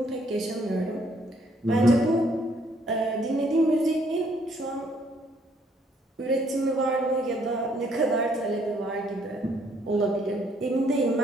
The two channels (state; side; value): normal; both; correlation 0.66